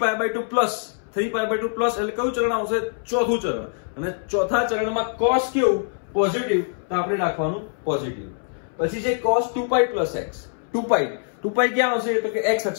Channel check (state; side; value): silent; right; 63 dB below the other